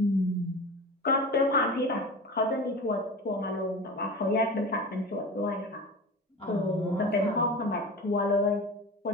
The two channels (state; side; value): normal; both; correlation 0.32